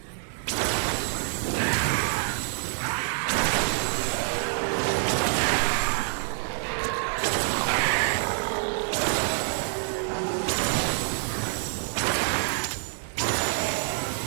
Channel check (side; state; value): left; silent; 60 dB below the other